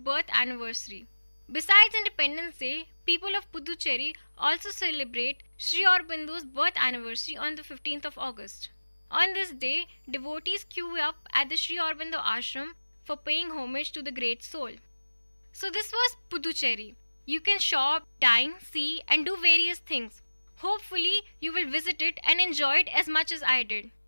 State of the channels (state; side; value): inverted; both; correlation -1.00